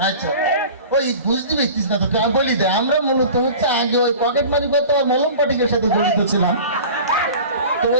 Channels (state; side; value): inverted; both; correlation -0.39